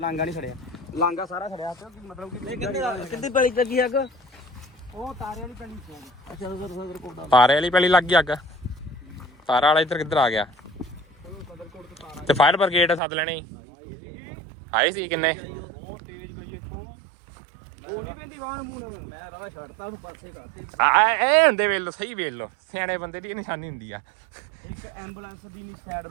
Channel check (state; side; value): drops out; left; at 13.0 s